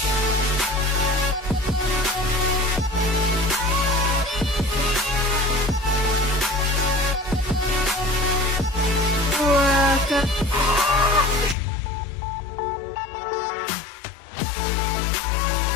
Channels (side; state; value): right; drops out; at 11.6 s